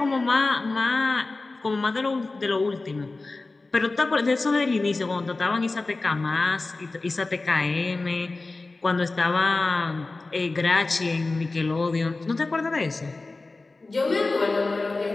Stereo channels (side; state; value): right; quieter; 3.4 dB